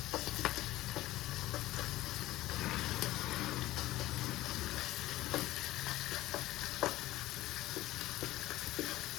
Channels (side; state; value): right; quieter; 16.4 dB